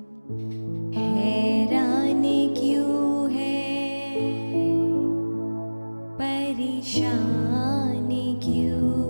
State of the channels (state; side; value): inverted; both; correlation -1.00